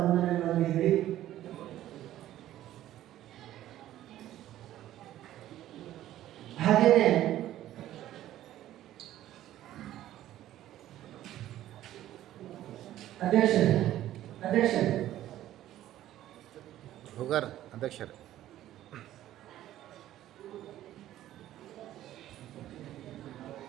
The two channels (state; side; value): quieter; left; 13.3 dB